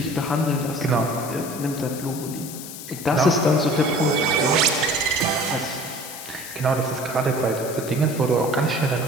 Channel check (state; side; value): noise; left; hiss, 11 dB below the sound